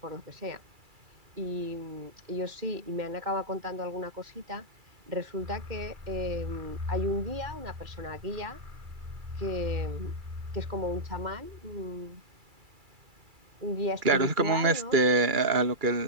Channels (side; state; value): left; late; 2.3 ms